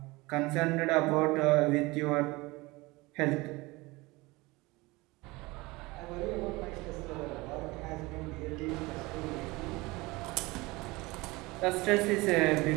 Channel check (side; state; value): left; quieter; 22.6 dB